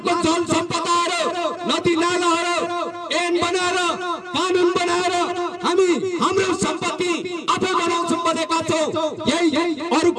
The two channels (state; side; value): identical; both; correlation 1.00